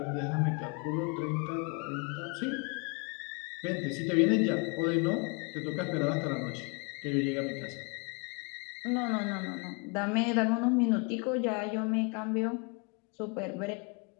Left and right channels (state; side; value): quieter; right; 32.7 dB